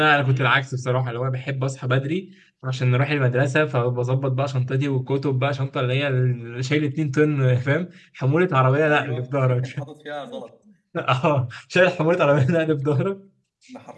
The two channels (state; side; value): identical; both; correlation 1.00